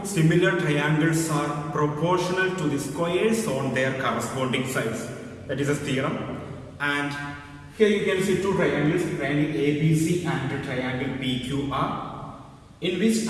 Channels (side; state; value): both; identical; correlation 1.00